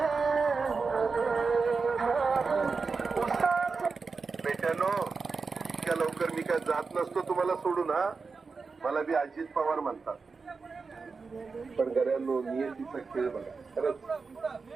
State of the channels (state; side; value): quieter; left; 4.6 dB